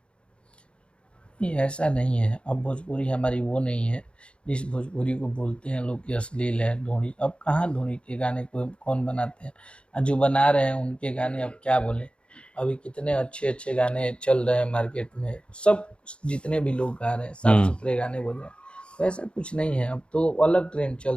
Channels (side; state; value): right; late; 0.057 ms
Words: ऐसा नहीं है। अब भोजपुरी हमारी वो नहीं है जिस भोजपुरी को बोलते हैं लोग कि अश्लील है, ढोढ़ी। अब कहाँ ढोढ़ी के गाने को कौन बनाते हैं? जो बना रहे हैं उनके गाने अब क्या बोले। अभी कितने अच्छे अच्छे गाने चल रहे हैं मार्केट में, सब जितने भी लोग गा रहे हैं साफ सुथरे गाने बोल रहे हैं। तो ऐसा कुछ नहीं है। अब तो अलग ट्रेंड